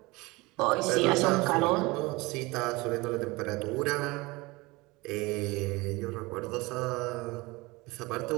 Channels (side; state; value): left; quieter; 23.1 dB